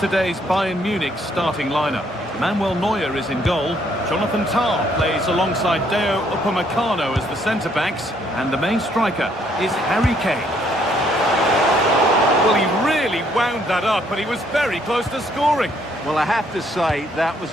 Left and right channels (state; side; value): normal; both; correlation 0.68